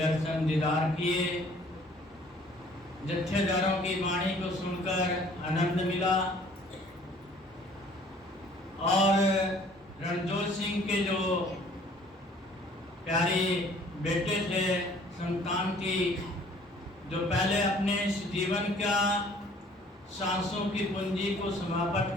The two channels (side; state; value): both; normal; correlation 0.55